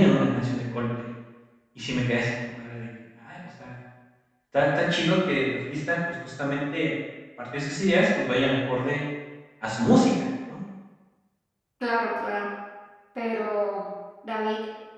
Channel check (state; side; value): identical; both; correlation 1.00